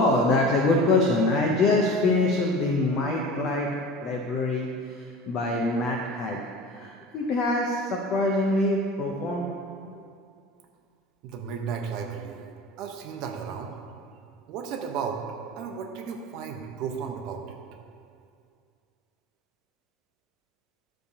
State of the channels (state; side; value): normal; both; correlation 0.36